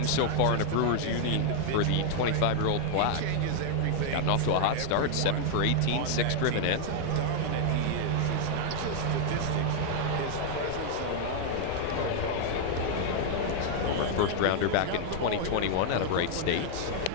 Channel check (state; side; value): different; both; correlation 0.00